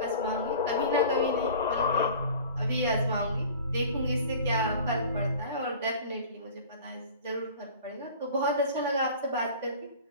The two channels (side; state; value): both; inverted; correlation -0.42